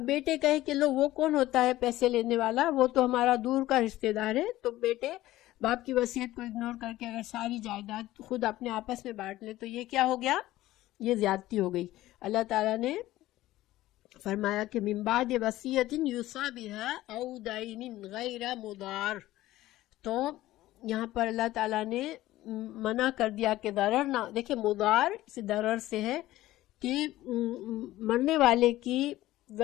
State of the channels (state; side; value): quieter; right; 15.9 dB